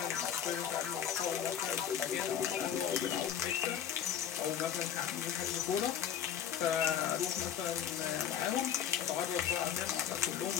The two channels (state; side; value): quieter; right; 9.4 dB